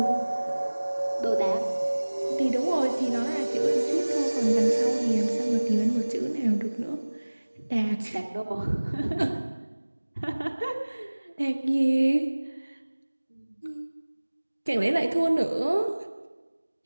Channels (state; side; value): inverted; both; correlation -1.00